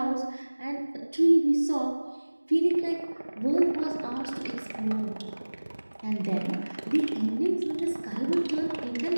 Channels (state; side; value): inverted; both; correlation -1.00